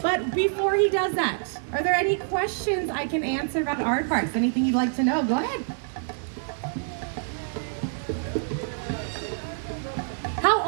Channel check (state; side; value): silent; left; digital silence